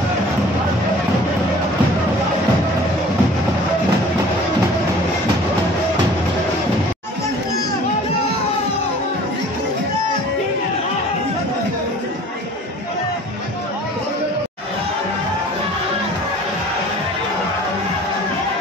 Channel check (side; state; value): both; normal; correlation 0.48